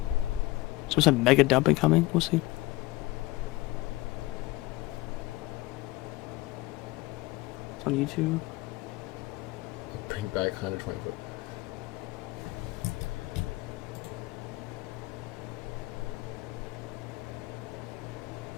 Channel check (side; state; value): right; quieter; 19.5 dB